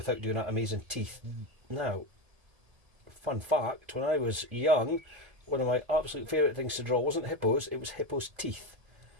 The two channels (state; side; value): late; left; 1.8 ms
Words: doing that amazing teeth. Now, fun fact, when I was young, one of my absolute favourite things to draw wasn't hippos, it was hippos' teeth.